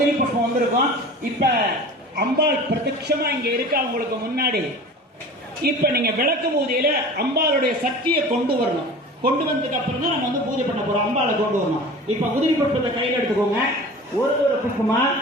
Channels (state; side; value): normal; both; correlation 0.39